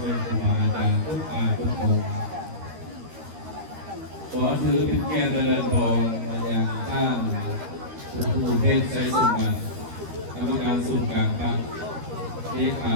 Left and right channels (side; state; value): left; late; 13 ms